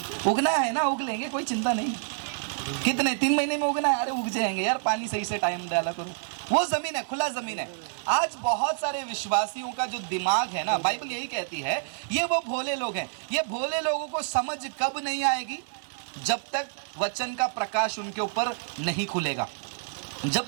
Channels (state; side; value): silent; left; digital silence